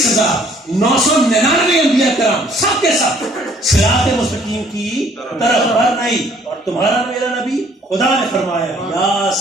انبیاء کرام سب کے سب صراط مستقیم کی طرف پر نہیں. اور تمہارا میرا نبی خدا نے فرمایا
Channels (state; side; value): normal; both; correlation 0.60